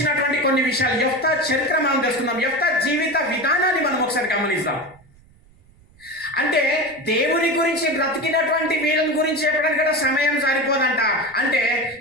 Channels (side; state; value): right; noise; rumble, 28 dB below the sound